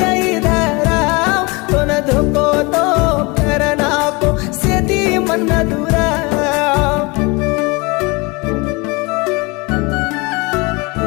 रही धरा तो न धोको तो करनाको सेती मन दूरा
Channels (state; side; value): quieter; right; 26.8 dB